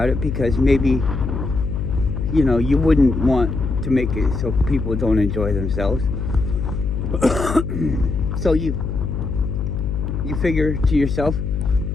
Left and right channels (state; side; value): noise; left; hum, 3 dB below the sound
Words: it, because maybe you wouldn't want to make it so people don't enjoy themselves. So you figure to yourself,